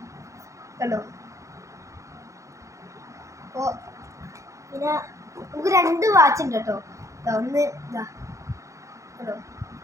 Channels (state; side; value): late; left; 0.15 ms